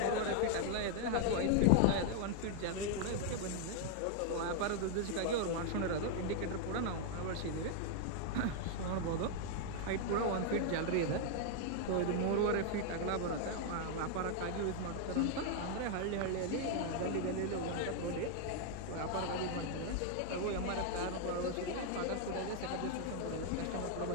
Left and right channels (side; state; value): both; different; correlation 0.00